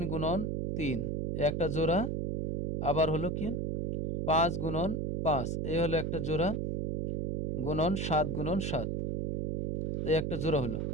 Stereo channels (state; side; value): noise; right; hum, 1 dB below the sound